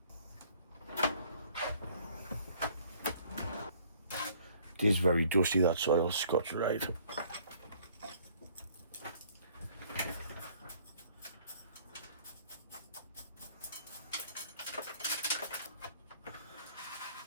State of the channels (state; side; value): inverted; both; correlation -0.58